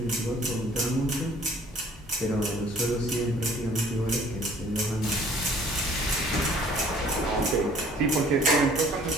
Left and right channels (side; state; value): both; normal; correlation 0.54